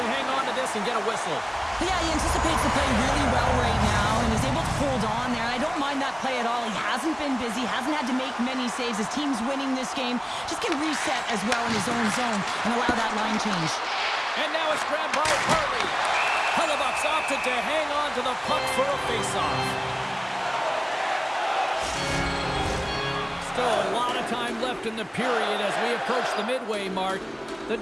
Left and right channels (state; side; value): identical; both; correlation 1.00